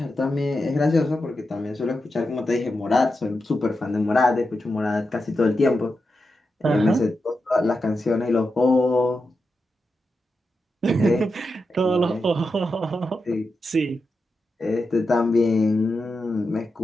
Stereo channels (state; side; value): normal; both; correlation 0.89